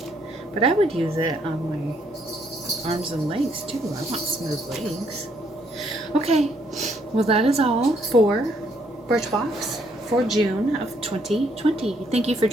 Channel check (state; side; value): normal; both; correlation 0.70